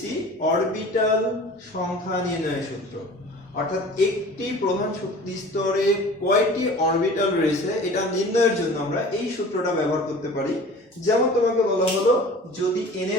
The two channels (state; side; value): normal; both; correlation 0.42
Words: অরবিটাল সংখ্যা নির্ণয়ের সূত্র। অর্থাৎ একটি প্রধান শক্তি স্তরে কয়টি অরবিটাল রয়েছে এটা নির্ণয়ের জন্য আমরা এই সূত্রটা ব্যবহার করতে পারি। যেমন তোমাকে বলা হলো যদি n